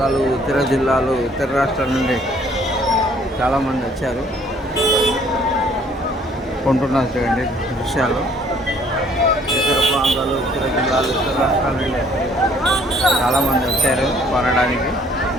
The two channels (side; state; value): both; normal; correlation 0.60